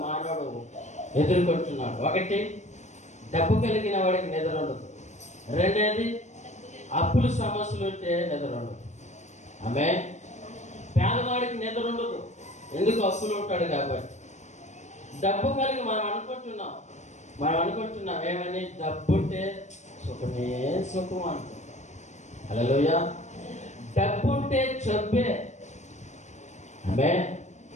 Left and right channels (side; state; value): right; late; 0.34 ms